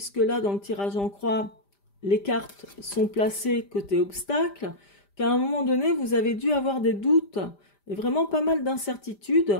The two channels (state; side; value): late; right; 5.0 ms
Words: là, dans le tirage en croix, les cartes sont placées côté obstacle, qu'à un moment donné, vous avez dû avoir des doutes et vraiment pas mal